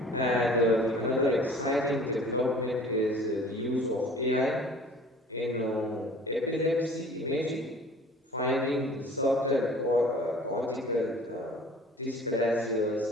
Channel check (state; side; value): normal; both; correlation 0.47